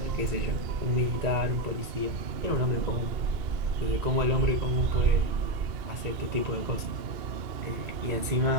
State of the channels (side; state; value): left; late; 2.1 ms